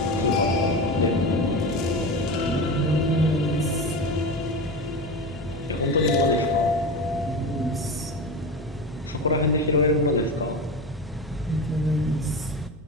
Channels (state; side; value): normal; both; correlation 0.24